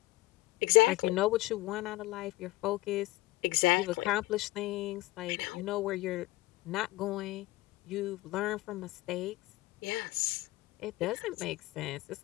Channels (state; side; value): quieter; right; 18.7 dB